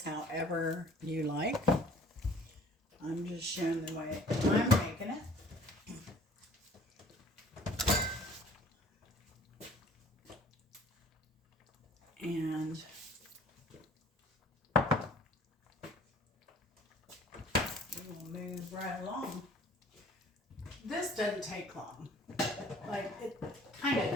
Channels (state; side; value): normal; both; correlation 0.52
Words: however you like. I'm just showing the way I'm making it. And we will move right along. This doesn't take long. Like, it kind of